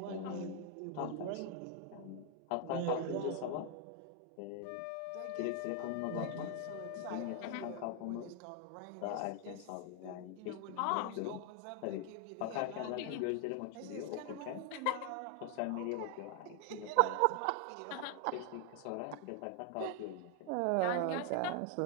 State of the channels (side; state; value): both; different; correlation 0.00